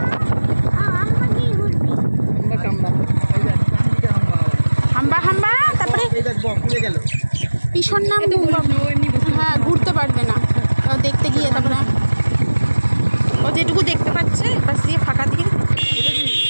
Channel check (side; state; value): both; inverted; correlation -1.00